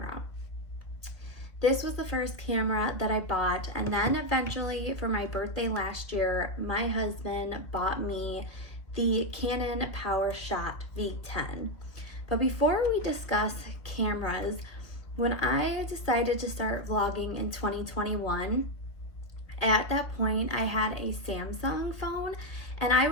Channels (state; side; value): late; right; 2.2 ms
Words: This was the first camera that I bought, and then eventually for my birthday last year, my husband bought me the Canon PowerShot V10. But before we discuss cameras, when I decided to start vlogging in 2021, at that point I had a Samsung phone and I